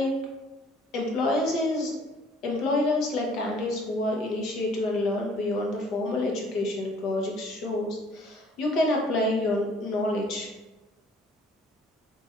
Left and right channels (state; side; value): normal; both; correlation 0.57